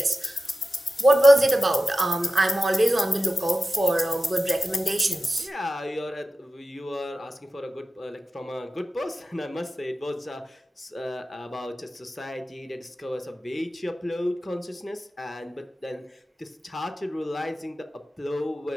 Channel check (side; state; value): both; normal; correlation 0.94